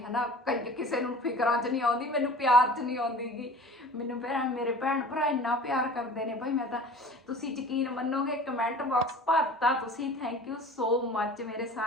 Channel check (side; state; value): both; normal; correlation 0.42